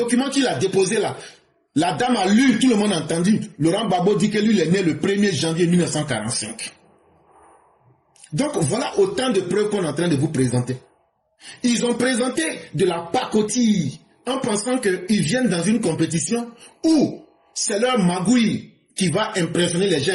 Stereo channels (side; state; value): both; identical; correlation 1.00